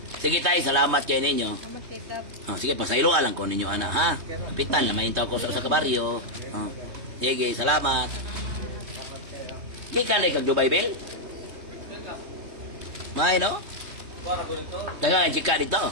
Sige tayo, salamat kayo ninyo. Salamat tita. Sige, pasaylo alang ko ninyo ana ha. Kapitan, lamayin tao ko sa kabaryo. Sige, salamat. Di ka na kag Dubai, Bel? May, no? Para ko dito. Tanga, chika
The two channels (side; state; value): left; late; 3.2 ms